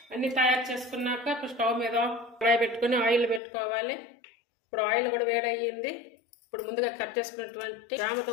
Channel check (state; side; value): drops out; right; at 3.4 s